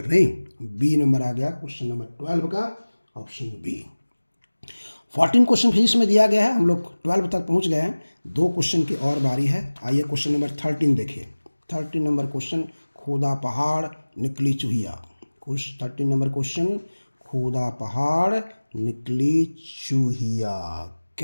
नहीं, बी नंबर आ गया क्वेश्चन नंबर 12 का, ऑप्शन बी। 14 क्वेश्चन फिजिक्स में दिया गया है, हम लोग 12 तक पहुंच गए हैं, 2 क्वेश्चन की और बारी है। आइए क्वेश्चन नंबर 13 देखिए। 13 नंबर क्वेश्चन, खोदा पहाड़ निकली चूहिया। 13 नंबर क्वेश्चन, खोदा पहाड़ निकली चूहिया।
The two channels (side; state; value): both; inverted; correlation -1.00